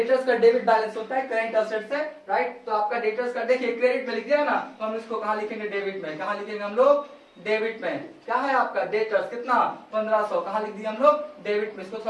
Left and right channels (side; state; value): both; identical; correlation 1.00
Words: का डेबिट बैलेंस होता है करेंट एसेट्स से, राइट। तो आपका डेटर्स का देखिए क्रेडिट में लिख दिया ना, तो हम इसको कहाँ लिखेंगे, डेबिट में। कहाँ लिखेंगे हम लोग, डेबिट में। क्या है आपका डेटर्स कितना 1500, कहाँ लिख दिया हम लोग, डेबिट में। इसको